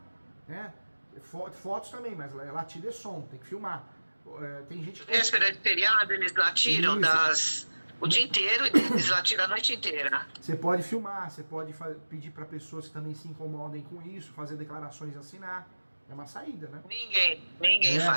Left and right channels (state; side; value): inverted; both; correlation -1.00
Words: né? Fotos também, mas latido é som, tem que filmar. Tem gente que... Véspera de feriado, eles latiram o dia inteiro e eles latiram a noite inteira. Você pode filmar, você pode pedir para pessoas que também se incomodem com isso, fazer declarações e assinar. É uma saída, né? Ninguém